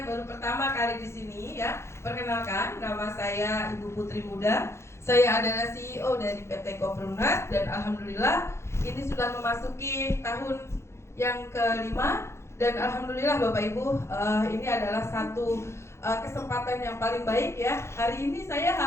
yang baru pertama kali di sini ya, perkenalkan, nama saya Ibu Putri Muda. Saya adalah CEO dari PT Koperumnas dan alhamdulillah ini sudah memasuki tahun yang kelima dan alhamdulillah Bapak Ibu, ini adalah satu kesempatan yang paling baik ya. Hari ini saya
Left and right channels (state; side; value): late; right; 0.13 ms